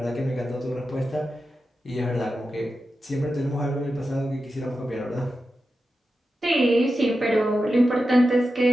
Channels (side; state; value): both; normal; correlation 0.91